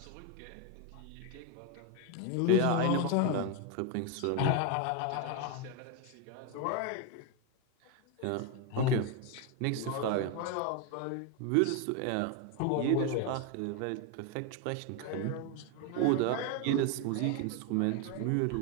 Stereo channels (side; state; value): both; different; correlation 0.01